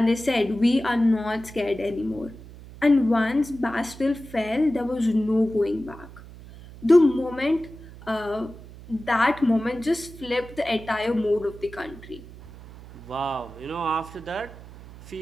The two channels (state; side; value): noise; right; hum, 17 dB below the sound